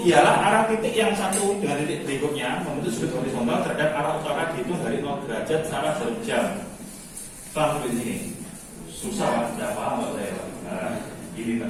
ialah arah titik yang satu dengan titik berikutnya membentuk sudut horizontal terhadap arah utara dihitung dari 0 derajat secara jarum jam. Paham sampai sini? Susah lah, tidak paham nggak saya. Nah, ini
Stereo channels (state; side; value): identical; both; correlation 1.00